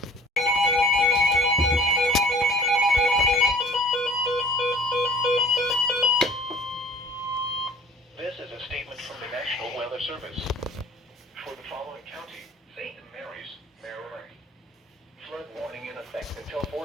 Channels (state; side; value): normal; both; correlation 0.48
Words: This is a statement from the National Weather Service. For the following county, St. Mary's, Maryland. Flood warning in effect until